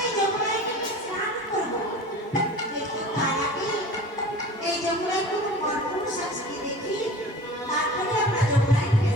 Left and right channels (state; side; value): normal; both; correlation 0.39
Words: এই যমুনায় গিয়ে স্নান করবো, কিন্তু তার আগে এই যমুনায় কোনো মরপুরুষ আছে কি দেখি, তারপরে আমরা যমুনায় গিয়ে